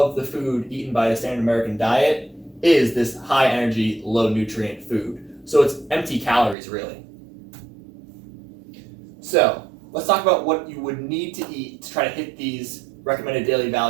the food eaten by the standard American diet is this high energy, low nutrient food. So it's empty calories, really. So let's talk about what you would need to eat to try to hit these recommended daily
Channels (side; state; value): left; drops out; at 6.6 s